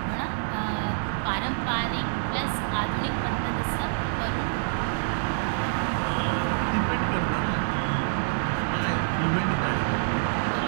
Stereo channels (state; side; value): silent; left; 60 dB below the other